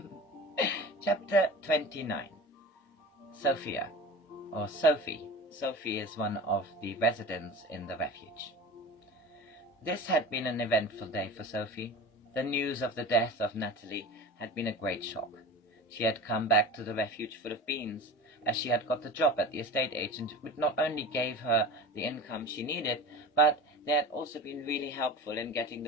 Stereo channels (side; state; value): both; normal; correlation 0.34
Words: Chapter 29. Sophia, or Sophie. Sophie is one of the residents in the refuge. This had been an eventful day for Sophie. The news of the death of Natalie had been a great shock. She had come back to the refuge full of beans, as she had got the job at the estate agent, which not only gave her the income she needed, but they had also been really helpful in getting